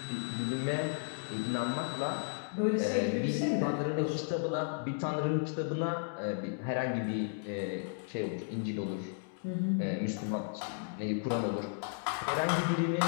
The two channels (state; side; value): silent; right; digital silence